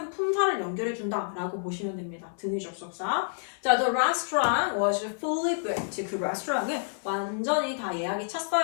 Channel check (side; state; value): right; silent; 59 dB below the other